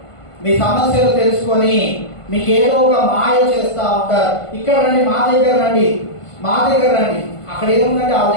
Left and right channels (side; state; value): right; late; 1.5 ms